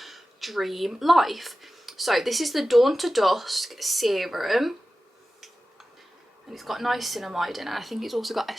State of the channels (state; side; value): normal; both; correlation 0.95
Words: dream life. So this is the Dawn to Dusk serum, and it's got niacinamide in it. I think it's also got